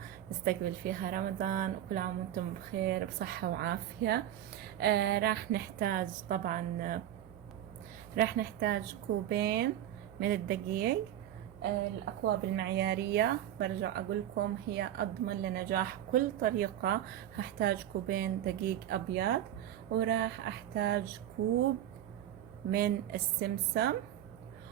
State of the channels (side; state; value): left; quieter; 11.7 dB